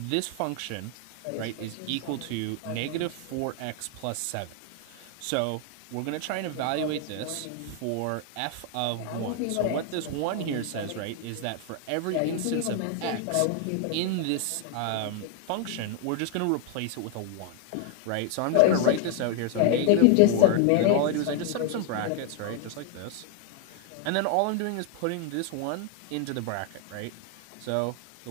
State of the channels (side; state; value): both; different; correlation 0.00